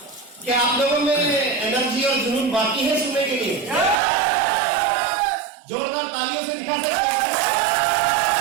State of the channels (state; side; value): drops out; left; at 4.0 s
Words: क्या आप लोगों में एनर्जी और जुनून बाकी है सुनने के लिए? जोरदार तालियों से दिखा सकते हैं।